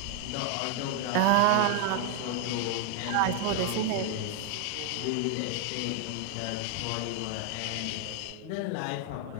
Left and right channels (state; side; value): different; both; correlation 0.00